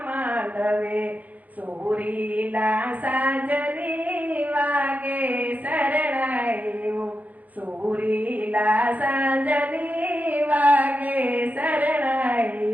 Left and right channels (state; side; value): late; left; 0.079 ms